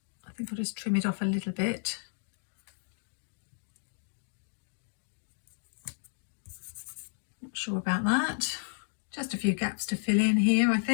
I think I'll just trim it off a little bit. Not sure about that. Just a few gaps to fill in here, I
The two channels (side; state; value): right; silent; digital silence